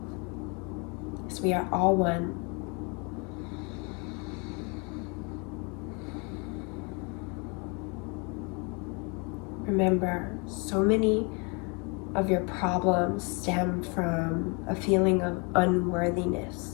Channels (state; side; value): quieter; right; 32.9 dB